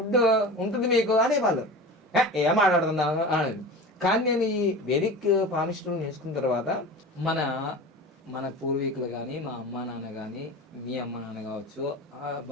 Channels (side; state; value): both; normal; correlation 0.33